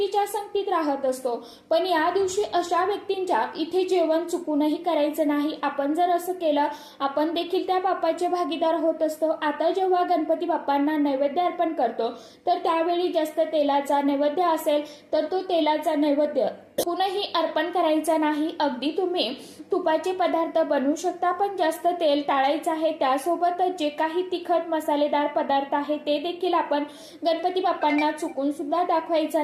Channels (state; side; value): identical; both; correlation 1.00